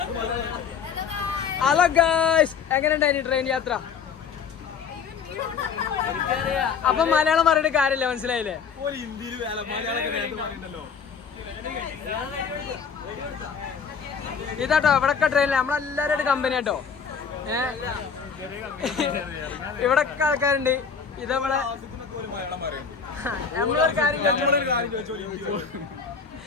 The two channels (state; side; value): quieter; right; 6.3 dB